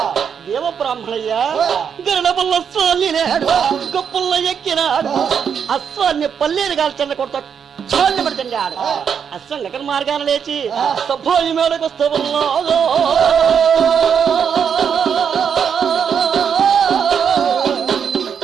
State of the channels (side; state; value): left; quieter; 7.3 dB